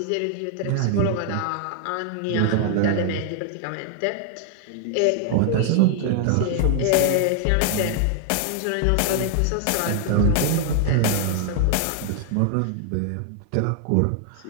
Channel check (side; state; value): both; different; correlation 0.00